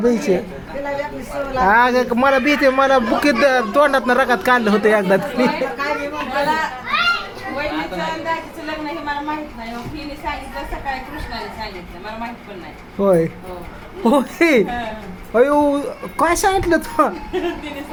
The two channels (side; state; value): both; identical; correlation 1.00